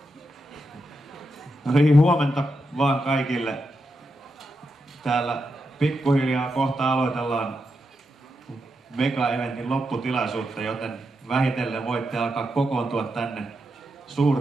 No niin, huomenta vaan kaikille. Täällä pikkuhiljaa kohta aloitellaan mega-eventin lopputilaisuutta, joten vähitellen voitte alkaa kokoontua tänne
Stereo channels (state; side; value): normal; both; correlation 0.86